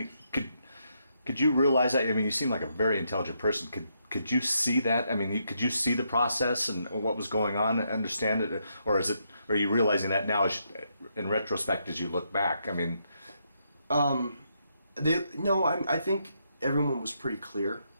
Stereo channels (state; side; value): inverted; both; correlation -0.78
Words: could you realize that? I mean, you seem like a very intelligent person. Could you see that? I mean, could you see the process and what was going on and understand it? Or are you realizing that now in retrospect as you look back? I mean... I think everyone was pretty clear